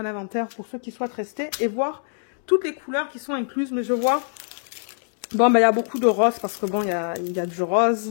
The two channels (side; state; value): right; silent; digital silence